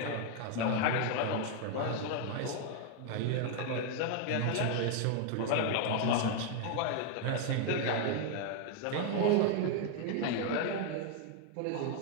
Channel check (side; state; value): both; different; correlation 0.00